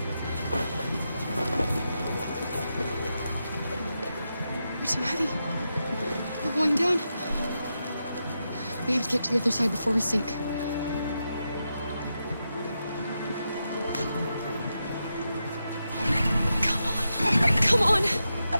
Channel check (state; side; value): inverted; both; correlation -0.87